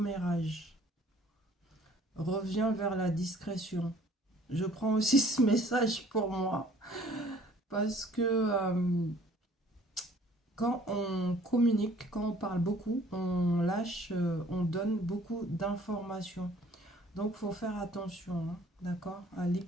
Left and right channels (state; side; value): normal; both; correlation 0.55